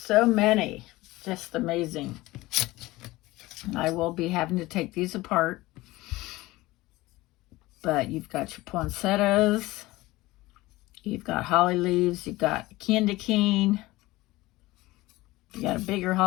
many, just amazing. I will be having to take these apart. But you've got your poinsettias, you've got holly leaves, you've got candy cane, you got a bigger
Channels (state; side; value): quieter; right; 19.2 dB